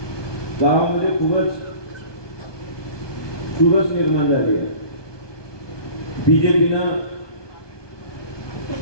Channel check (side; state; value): right; late; 1.2 ms